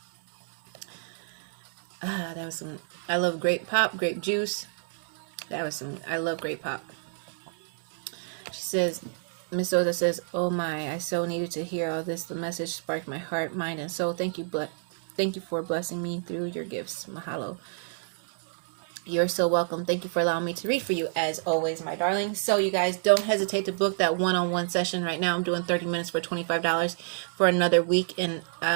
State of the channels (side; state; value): left; silent; 59 dB below the other